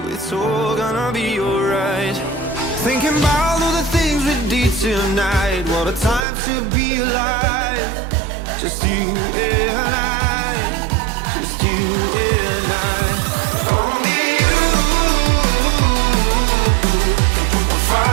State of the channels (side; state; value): left; drops out; at 6.2 s